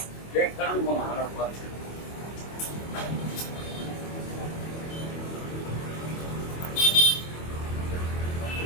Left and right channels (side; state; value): right; late; 25 ms